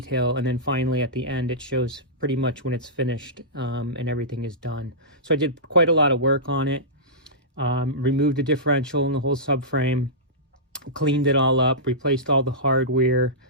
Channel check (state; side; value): normal; both; correlation -0.16